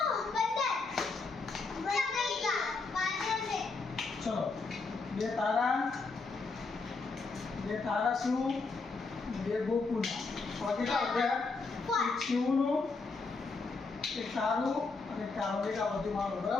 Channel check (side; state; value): right; quieter; 4.1 dB